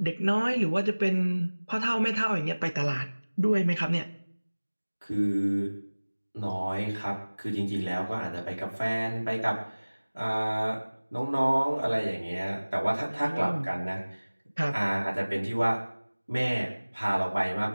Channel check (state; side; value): inverted; both; correlation -1.00